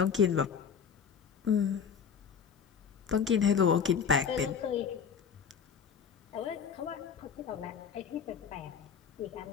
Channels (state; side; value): quieter; right; 7.0 dB